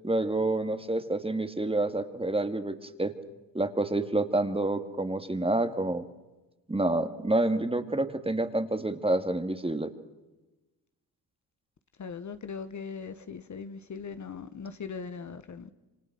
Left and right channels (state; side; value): normal; both; correlation 0.67